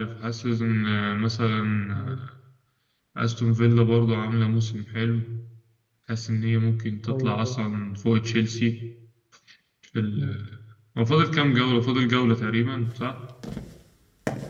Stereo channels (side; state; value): both; identical; correlation 1.00